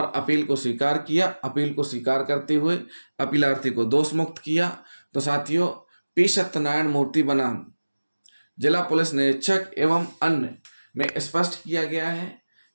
अपील को स्वीकार किया। अपील को स्वीकार करते हुए अपीलार्थी को दोष मुक्त किया। तो साथियों, पी सत्यनारायण मूर्ति बनाम जिला पुलिस निरीक्षक एवं अन्य में स्पष्ट किया गया है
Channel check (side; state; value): both; inverted; correlation -1.00